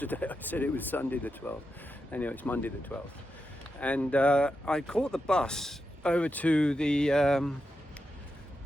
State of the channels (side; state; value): both; normal; correlation 0.87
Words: I said it was Sunday the 12th. Anyway, it's Monday the 12th. And I caught the bus over to the